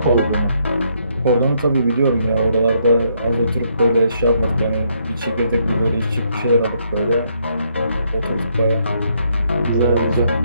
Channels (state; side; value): inverted; both; correlation -0.73